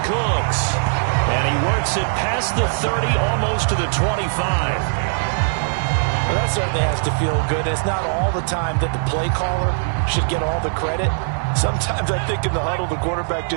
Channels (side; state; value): left; silent; 66 dB below the other